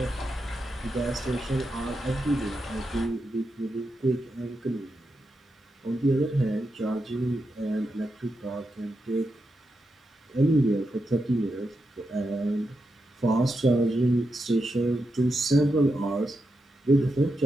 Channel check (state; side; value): normal; both; correlation 0.86